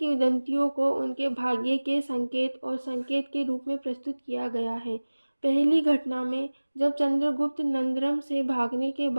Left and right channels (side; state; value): both; inverted; correlation -1.00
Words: को उनके भाग्य के संकेत और संकेत के रूप में प्रस्तुत किया गया है। पहली घटना में जब चंद्रगुप्त नंदरम से भागने के